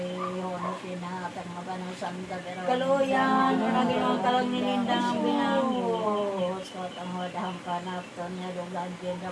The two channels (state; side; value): identical; both; correlation 1.00